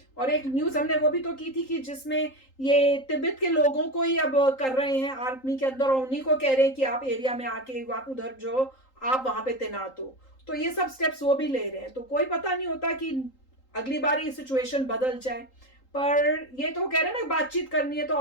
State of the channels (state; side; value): late; right; 3.8 ms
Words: और एक न्यूज हमने वो भी तो की थी कि जिसमें ये तिब्बत के लोगों को ही अब कर रहे हैं आर्मी के अंदर, और उन्हीं को कह रहे हैं कि आप एरिया में आके आप उधर जो आप वहां पे तैनात हो। तो ये सब स्टेप्स वो भी ले रहे हैं। तो कोई पता नहीं होता कि अगली बार ये सिचुएशन बदल जाए। पर ये तो कह रहे हैं ना बातचीत करनी है, तो